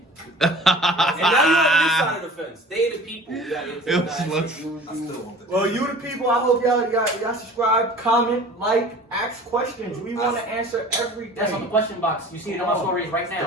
And now you're on this side of the fence. They the people. You gotta get to It the was guys. like- I still want the cow. Well, you the people. I hope y'all subscribe, comment, like, ask questions. We want to answer everything. That's on the question box. You see it on my stories right Still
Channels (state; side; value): normal; both; correlation 0.44